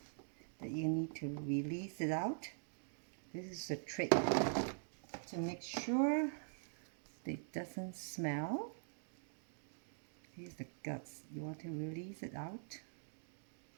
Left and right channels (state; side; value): silent; left; digital silence